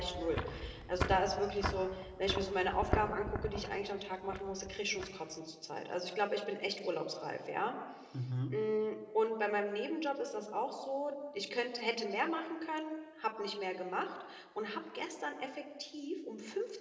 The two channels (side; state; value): both; identical; correlation 1.00